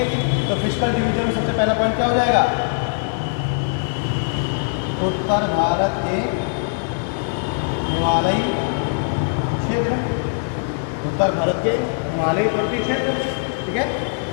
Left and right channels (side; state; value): right; silent; 65 dB below the other